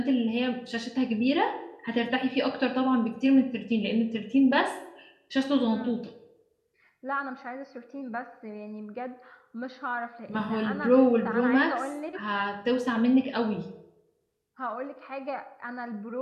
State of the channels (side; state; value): both; identical; correlation 1.00